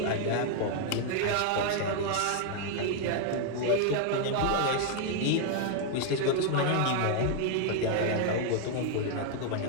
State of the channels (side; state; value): both; different; correlation 0.00